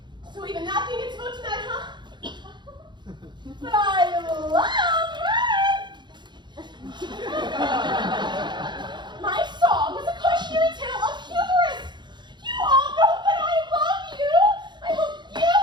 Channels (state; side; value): late; left; 0.22 ms